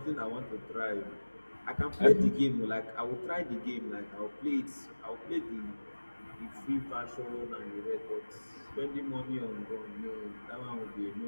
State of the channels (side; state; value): both; inverted; correlation -1.00